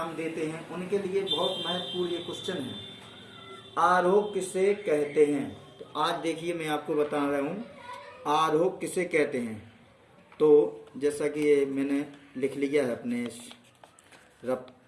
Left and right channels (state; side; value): identical; both; correlation 1.00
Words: देते हैं, उनके लिए बहुत महत्वपूर्ण ये क्वेश्चन है, आरोह किसे कहते हैं। तो आज देखिए मैं आपको बता रहा हूँ आरोह किसे कहते हैं। तो जैसा कि ये मैंने लिख लिया है अपने रफ